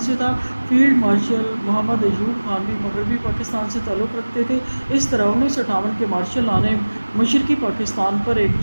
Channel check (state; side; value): inverted; both; correlation -1.00